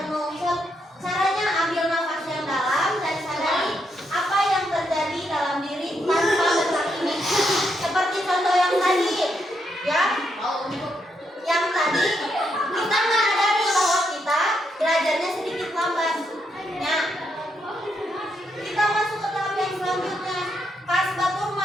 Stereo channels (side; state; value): both; normal; correlation 0.79